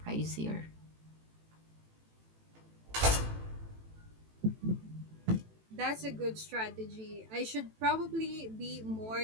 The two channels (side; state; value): left; late; 18 ms